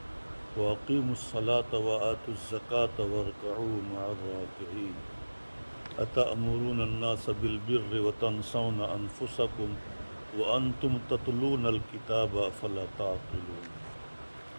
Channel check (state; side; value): inverted; both; correlation -1.00